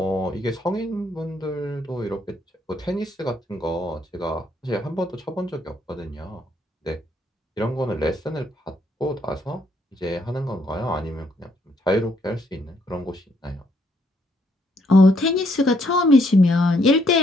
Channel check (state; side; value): normal; both; correlation 0.71